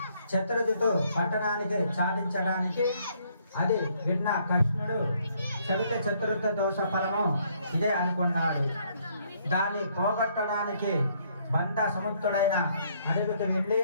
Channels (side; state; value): both; inverted; correlation -0.68